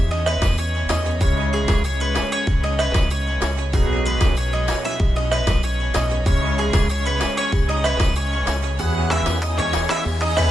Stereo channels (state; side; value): normal; both; correlation 0.88